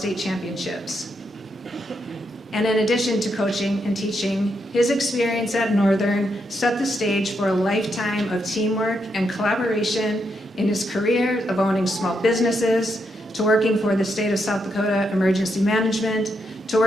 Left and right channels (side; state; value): both; normal; correlation 0.81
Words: championships. And in addition to coaching and teaching, his experience at Northern set the stage for a lifetime of teamwork and collaboration in his career of owning small businesses, to working for the state of South Dakota Emergency Management, to